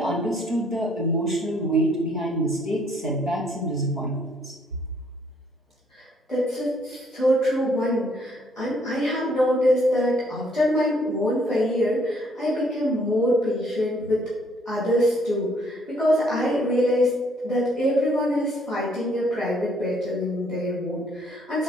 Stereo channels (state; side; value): normal; both; correlation 0.66